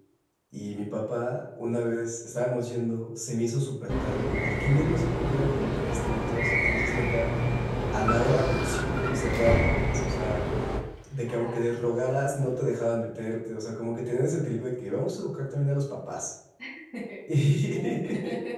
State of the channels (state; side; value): identical; both; correlation 1.00